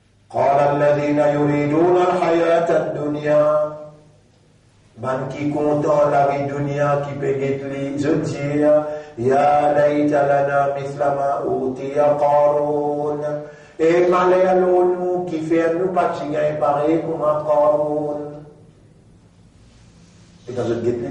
قال الذين يريدون الحياة الدنيا. Man qui content la vie dunya qui peut les dire ya layta lana mithla ma utiya Qarun. Et malheur nous qui fait nous pas gagner pareil comme un Qarun. Et quand je guette les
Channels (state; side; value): identical; both; correlation 1.00